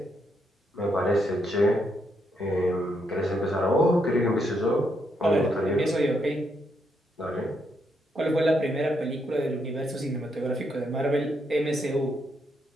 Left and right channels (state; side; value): normal; both; correlation 0.77